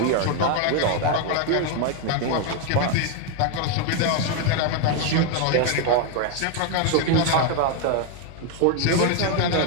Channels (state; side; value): different; both; correlation 0.01